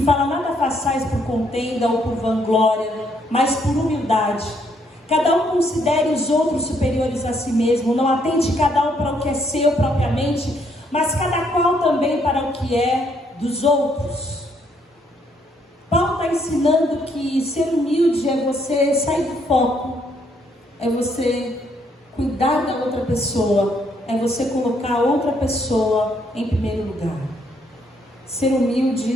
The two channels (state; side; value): normal; both; correlation 0.71